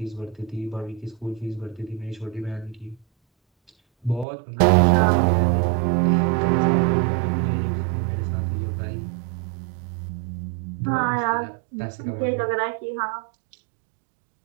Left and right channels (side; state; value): left; drops out; at 4.2 s